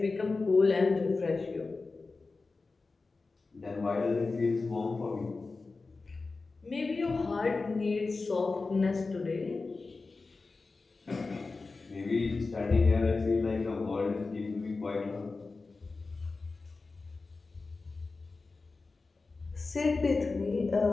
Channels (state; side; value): quieter; right; 3.9 dB